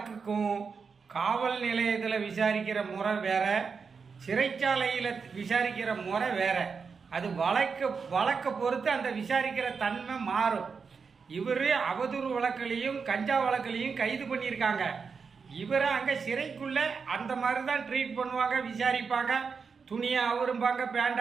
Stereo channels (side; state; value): left; quieter; 5.5 dB